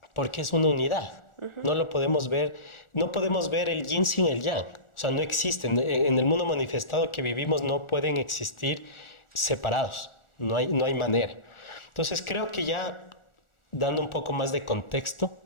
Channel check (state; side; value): late; right; 1.4 ms